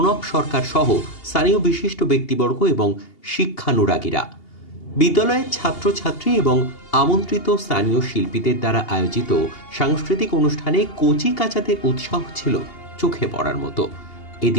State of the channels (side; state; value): right; late; 2.8 ms